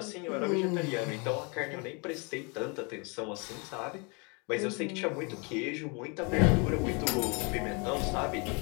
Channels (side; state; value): right; quieter; 32.0 dB